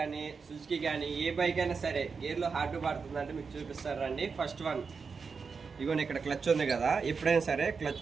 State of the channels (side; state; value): left; quieter; 5.2 dB